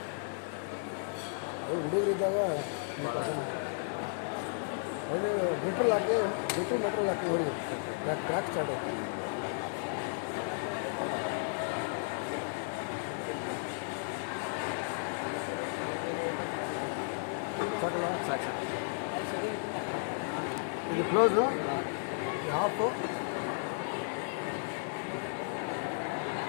ಅವು ಹುಡುಗರಿದ್ದಾಗ ಅವರು ಮೆಟ್ರೋಲ್ ಹಾಕಿ ಮೆಟ್ರೋಲ್ ಹಾಕಿ ಹೋಗ್ಬೇಕು, ಕ್ರ್ಯಾಕ್ ಸ್ಟಾರ್ಟ್ ಆಗ್ತದೆ. ಸಾಕಲ್ಲ? ಸಾಕು. ಇದು ಕ್ಲೋಸು, ಹಾಫು.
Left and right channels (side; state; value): right; silent; digital silence